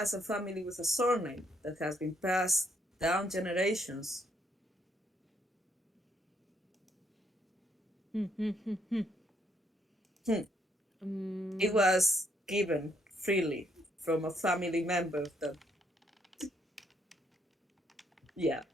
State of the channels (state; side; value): normal; both; correlation 0.73